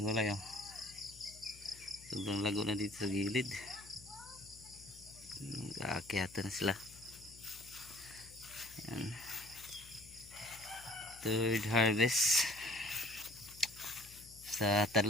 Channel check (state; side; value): noise; left; hum, 20 dB below the sound